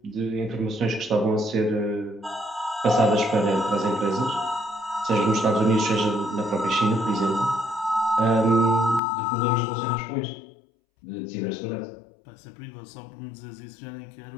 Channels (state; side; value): drops out; right; at 9.0 s